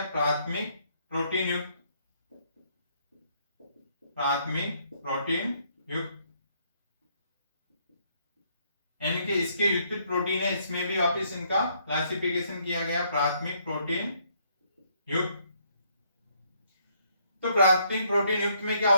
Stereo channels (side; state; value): both; inverted; correlation -0.69